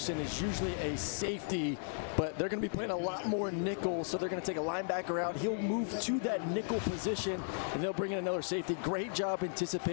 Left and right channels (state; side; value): silent; right; digital silence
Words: is usually a safety, but they're going to be playing a lot more nickel, so they're going to take a linebacker out. He'll move to that nickel position, and they'll bring in another safety. Great job